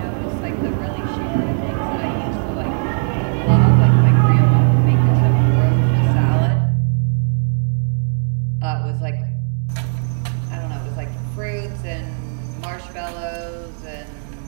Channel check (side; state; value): left; silent; digital silence